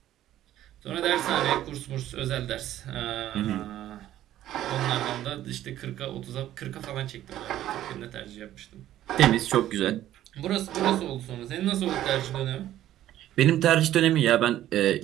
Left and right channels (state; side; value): quieter; left; 12.9 dB